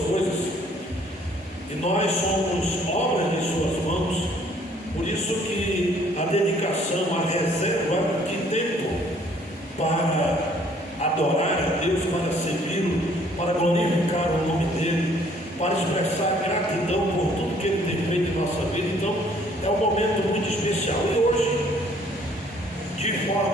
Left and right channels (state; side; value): normal; both; correlation 0.60